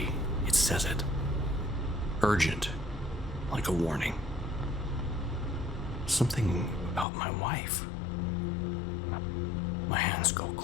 it says it. Urgent. Like a warning. Something about my wife. My hands go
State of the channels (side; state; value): right; drops out; at 7.1 s